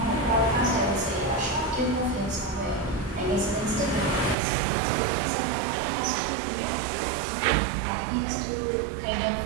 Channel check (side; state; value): left; drops out; at 4.4 s